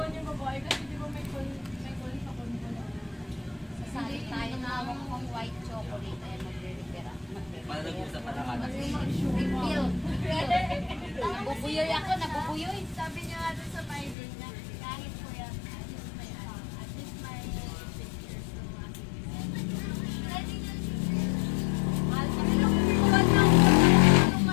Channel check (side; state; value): right; drops out; at 14.2 s